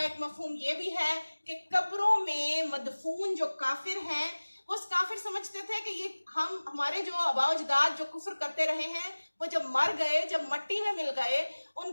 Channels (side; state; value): both; inverted; correlation -1.00